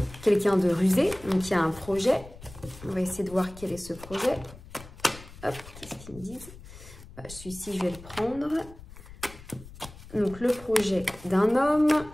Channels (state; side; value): noise; left; rumble, 17 dB below the sound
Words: quelqu'un de rusé, donc il y a un projet. On va essayer de voir quel est ce projet. Hop, qu'est-ce qu'ils me disent? Celui-ci, je vais le prendre. Donc le projet d'un homme,